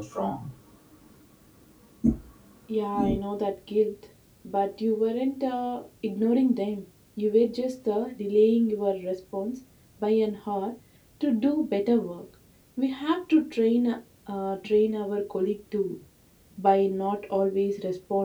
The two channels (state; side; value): identical; both; correlation 1.00